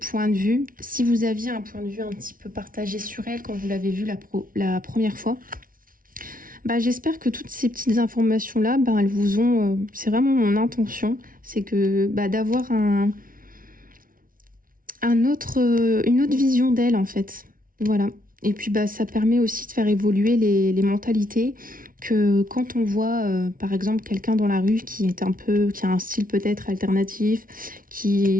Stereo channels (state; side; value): late; left; 0.41 ms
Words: de vue, si vous aviez un point de vue un petit peu partagé sur elle quand vous l'avez vue la première fois, bah, j'espère que toutes ces petites informations là, bah, elles vous ont, c'est vraiment mon intention, c'est que bah, d'avoir une autre vision d'elle en fait, voilà. Et puis bah ça permet aussi de faire évoluer les mentalités, que quand on voit par exemple quelqu'un dans la rue qui a un style peut-être alternatif,